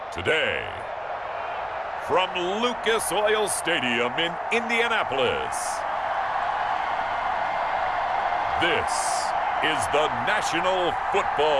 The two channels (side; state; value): both; identical; correlation 1.00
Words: Today, from Lucas Oil Stadium in Indianapolis, this is the National